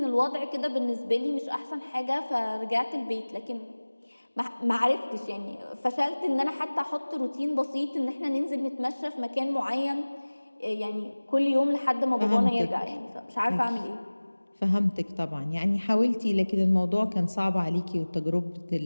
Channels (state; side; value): inverted; both; correlation -1.00